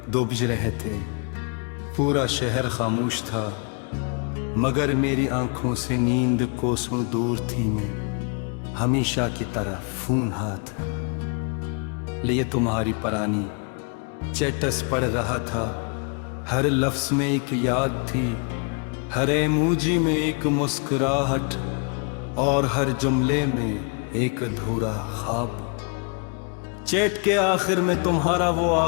2 बज रहे थे। पूरा शहर खामोश था, मगर मेरी आंखों से नींद कोसों दूर थी। मैं हमेशा की तरह फोन हाथ लिए तुम्हारी पुरानी चैटस पढ़ रहा था। हर लफ्ज में एक याद थी, हर इमोजी में एक मुस्कुराहट, और हर जुमले में एक अधूरा ख्वाब। चैट के आखिर में तुम्हारा वो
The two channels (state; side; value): quieter; right; 37.5 dB